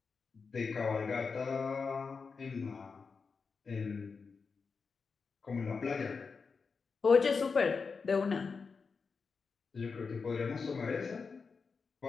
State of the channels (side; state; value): right; quieter; 5.0 dB